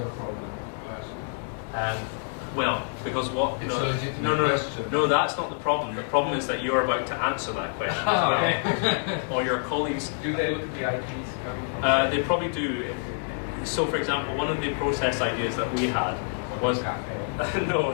problem? Well, because what? It's a legitimate question. No, that's not the problem. The problem is that you're about to answer that question as well. Or your colleagues. Do they look at the IPs coming from? They probably do. So, for example, one of the process ideas that we had was no,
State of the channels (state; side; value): silent; right; 60 dB below the other